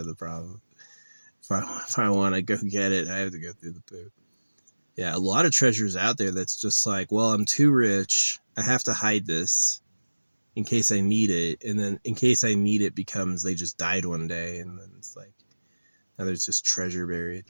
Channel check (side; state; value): both; inverted; correlation -1.00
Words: the problem. If I want to go get it, I have to go through the poop. Yeah, a lot of treasures out there that's just like, well, I'm too rich. I have to hide this in case I need it. And then in case I need it becomes they just died one day. And then it's like, now there's just treasure buried.